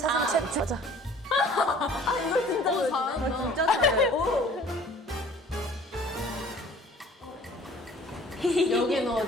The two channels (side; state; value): both; normal; correlation 0.51